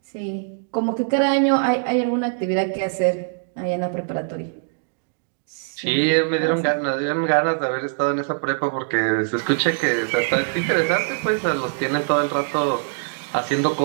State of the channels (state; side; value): silent; left; digital silence